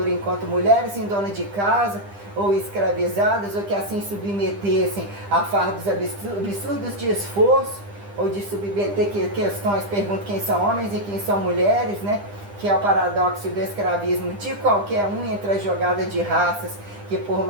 enquanto mulheres em dona de casa, ou escravizadas, ou que assim submetessem a fardos absurdos de esforço, ou de submeter questões, pergunto quem são homens e quem são mulheres, né? Que é o paradoxo do escravismo de qualquer um entre a jogada de raças, que por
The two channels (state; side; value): late; left; 10 ms